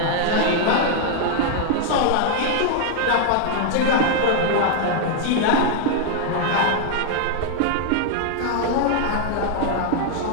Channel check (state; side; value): different; both; correlation 0.00